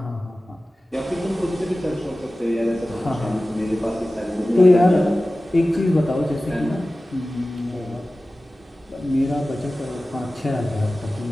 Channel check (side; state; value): both; normal; correlation 0.96